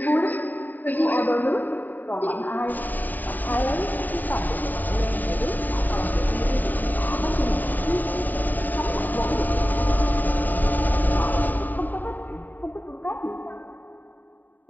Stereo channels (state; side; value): late; right; 0.087 ms